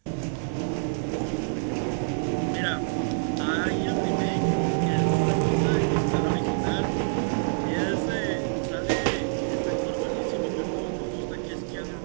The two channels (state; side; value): silent; left; digital silence